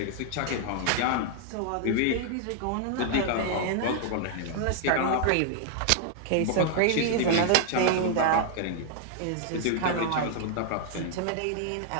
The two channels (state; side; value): different; both; correlation 0.00